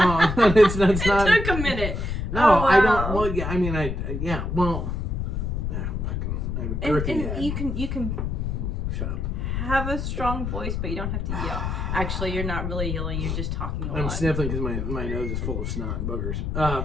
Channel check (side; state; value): left; noise; rumble, 2 dB below the sound